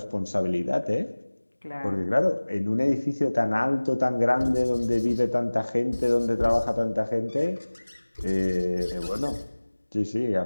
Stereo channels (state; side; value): inverted; both; correlation -1.00